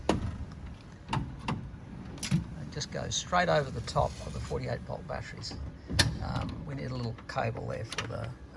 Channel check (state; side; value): identical; both; correlation 1.00